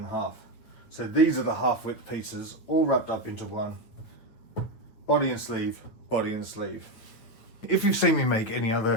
half. So these are the half width pieces all wrapped up into one. Body and sleeve, body and sleeve. If you've seen me make any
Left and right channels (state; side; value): late; right; 9.1 ms